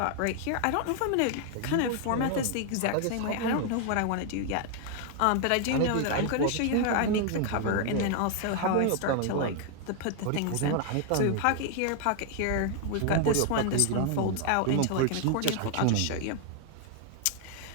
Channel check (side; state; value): both; different; correlation 0.00